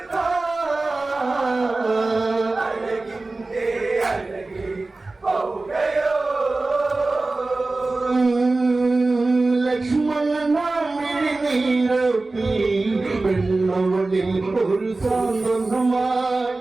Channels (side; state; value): left; quieter; 3.3 dB